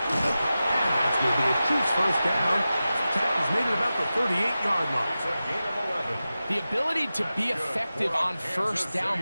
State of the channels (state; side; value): inverted; both; correlation -0.94